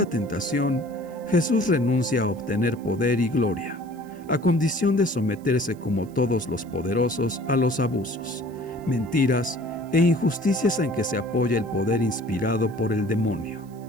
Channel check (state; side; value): noise; right; hiss, 29 dB below the sound